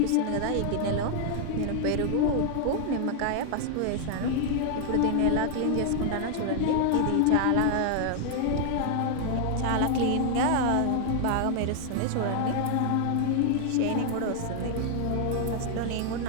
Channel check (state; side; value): different; both; correlation 0.00